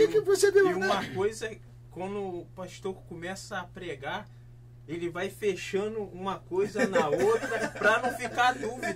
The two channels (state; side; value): identical; both; correlation 1.00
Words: você viu? E uma coisa é, quando o pastor começa a pregar, ele vai fechando uma coisa na outra para não ficar